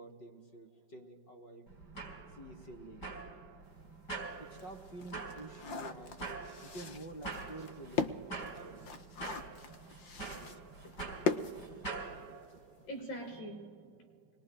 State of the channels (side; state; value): right; late; 5.7 ms